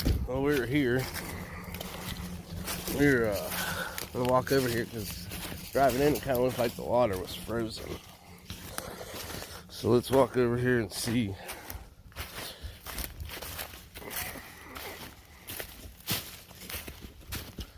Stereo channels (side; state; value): both; identical; correlation 1.00